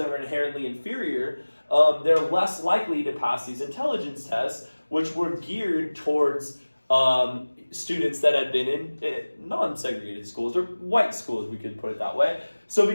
were inherently inferior, they're less likely to pass these intelligence tests, which were geared towards students that had been in non-segregated schools, or white schools, we could put it that way. So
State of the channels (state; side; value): inverted; both; correlation -1.00